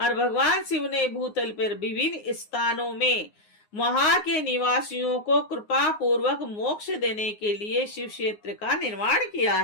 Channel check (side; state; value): right; late; 9.6 ms